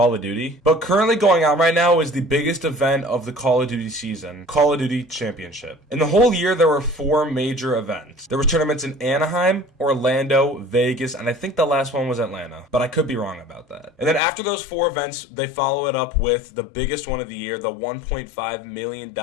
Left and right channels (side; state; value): right; drops out; at 14.2 s